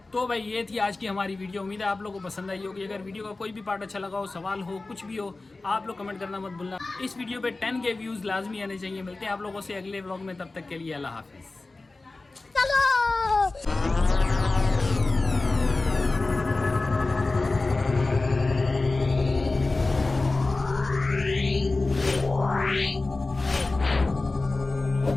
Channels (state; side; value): quieter; right; 3.3 dB